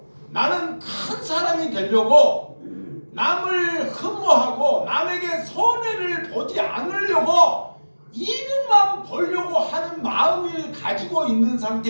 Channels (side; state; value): both; inverted; correlation -1.00